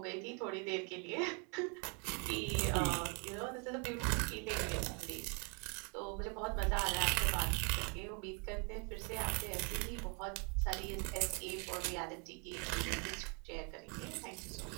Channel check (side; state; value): left; quieter; 35.7 dB